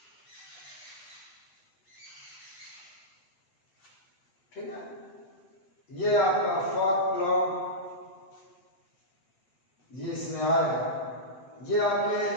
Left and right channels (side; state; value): right; late; 8.2 ms